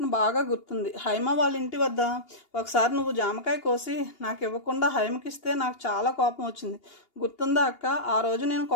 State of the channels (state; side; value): late; right; 2.8 ms